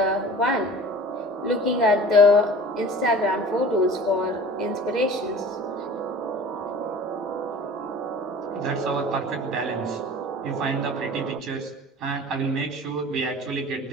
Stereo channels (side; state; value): both; normal; correlation 0.41